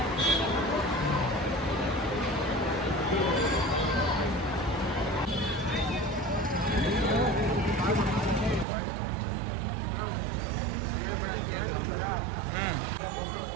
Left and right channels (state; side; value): drops out; left; at 8.7 s